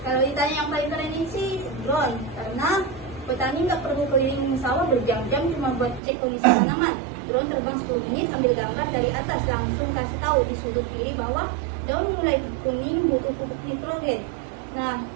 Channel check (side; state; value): left; drops out; at 6.0 s